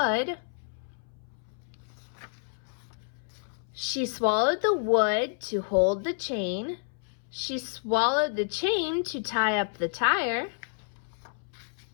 She swallowed the wood to hold the chain. She swallowed the chain to tie up the tire.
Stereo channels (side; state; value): right; silent; 58 dB below the other